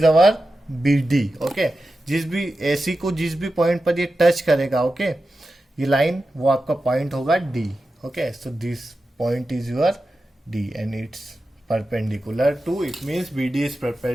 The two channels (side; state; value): both; normal; correlation 0.92